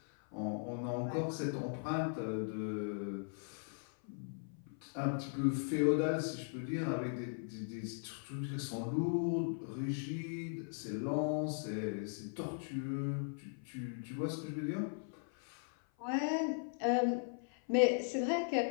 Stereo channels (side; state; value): right; silent; 52 dB below the other